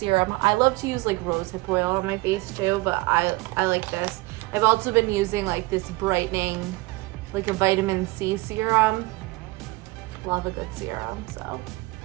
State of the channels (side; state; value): left; quieter; 22.4 dB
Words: I love to use like rosehip oil on my face too, but I like this. I've also been using like this brightening, like a vitamin C serum. Love a good serum, so.